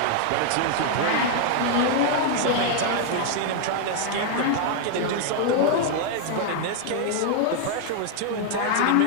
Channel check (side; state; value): both; different; correlation 0.00